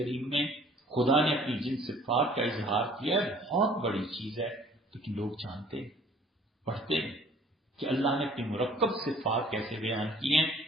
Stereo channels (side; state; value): both; normal; correlation 0.54